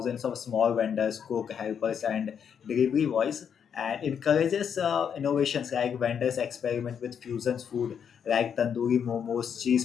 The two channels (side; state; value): right; quieter; 7.7 dB